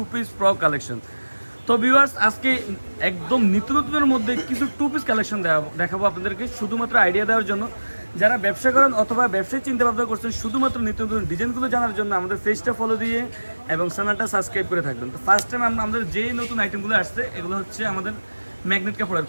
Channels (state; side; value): inverted; both; correlation -1.00